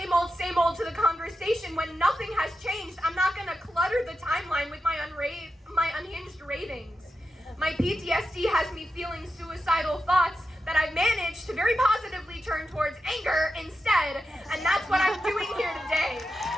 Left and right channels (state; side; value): normal; both; correlation 0.89